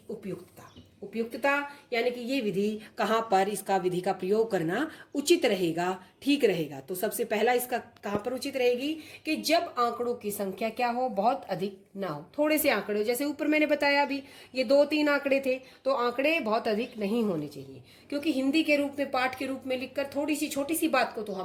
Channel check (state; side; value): identical; both; correlation 1.00